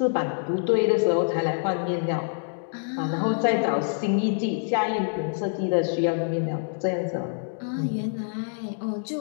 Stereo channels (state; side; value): silent; right; digital silence